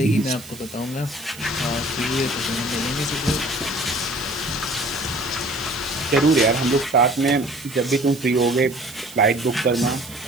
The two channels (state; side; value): noise; right; hiss, 17 dB below the sound